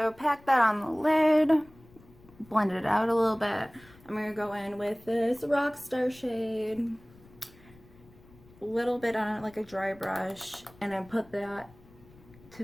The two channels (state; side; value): noise; left; rumble, 25 dB below the sound